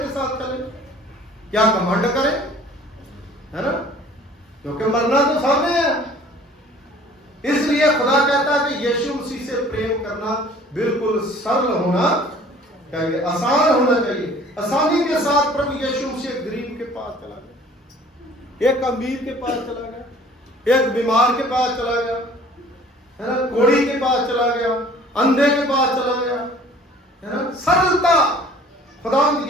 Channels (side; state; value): both; normal; correlation 0.51